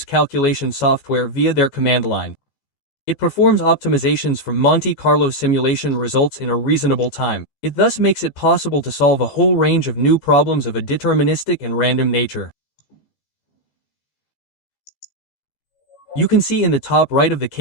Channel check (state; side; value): late; right; 14 ms